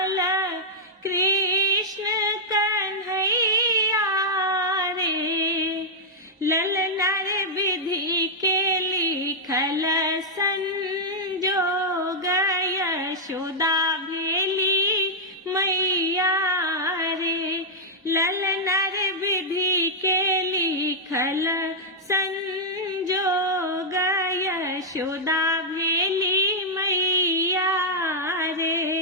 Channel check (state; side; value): normal; both; correlation -0.06